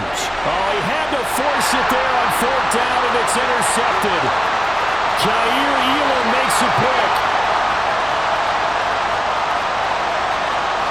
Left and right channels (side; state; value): left; noise; hum, 19 dB below the sound